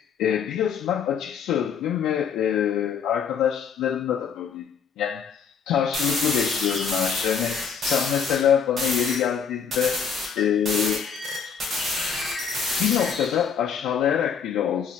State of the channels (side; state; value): right; quieter; 6.9 dB